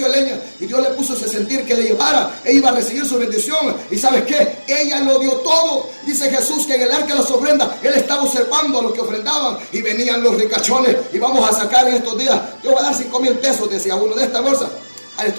de leña y Dios le puso ese sentir que le llevara, ella iba a recibir su bendición. ¿Y sabes qué? Ella lo dio todo. Dice Jesús que en el arca de las ofrendas Él estaba observando a los que ofrendaban y venían los ricachones y vamos a sacar en estos días. Yo voy a dar 5,000 pesos, decía uno, de esta bolsa. A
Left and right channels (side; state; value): both; inverted; correlation -1.00